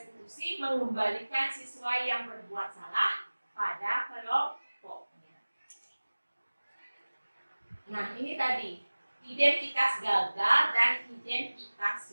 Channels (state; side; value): inverted; both; correlation -1.00